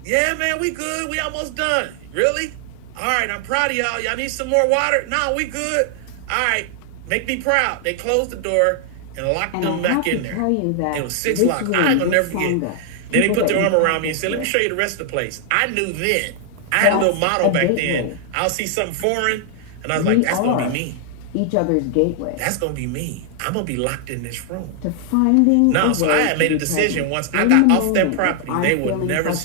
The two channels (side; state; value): both; different; correlation 0.00